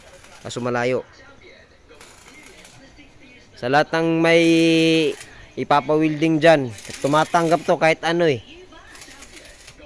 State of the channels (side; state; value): both; identical; correlation 1.00